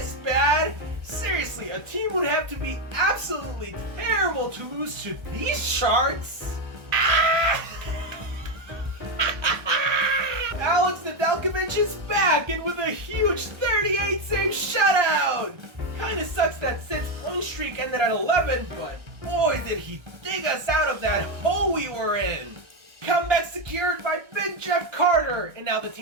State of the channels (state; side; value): late; left; 1.3 ms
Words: bad. Seriously, a team would have to be absolutely terrible to lose to these Sharks. Alex Nedeljkovic is back and with a huge 38-save shutout! Kinda sucks that Sid's point streak ended at 11, but boy did he dig us out of that hole we were in! Comeback secured by Big Jeff Carter, and now the